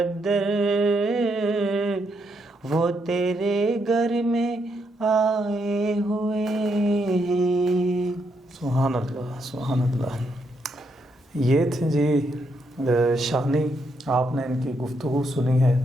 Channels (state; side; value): normal; both; correlation 0.78